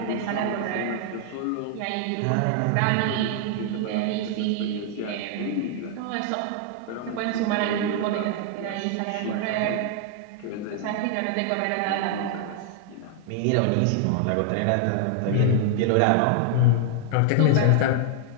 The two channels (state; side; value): different; both; correlation 0.00